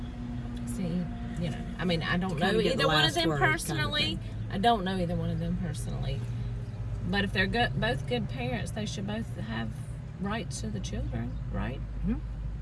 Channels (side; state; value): both; identical; correlation 1.00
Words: See, I mean, I don't Kinda know get the either one of last them word kind of personally. thing. I don't know either one of them personally. But if they're both good parents, they should both have rights to the children, right?